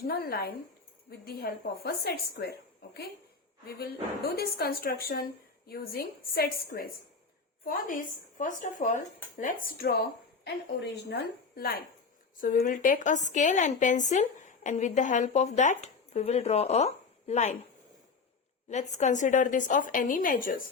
line with the help of a set square. Okay, we will do this construction using set squares. For this, first of all, let's draw an original line. So we will take a scale and pencil, and with the help of that we will draw a line. Let's consider this of any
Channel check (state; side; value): quieter; right; 4.7 dB